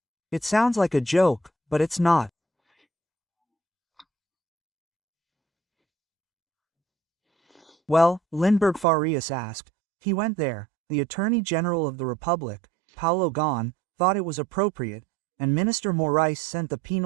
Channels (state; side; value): drops out; left; at 8.8 s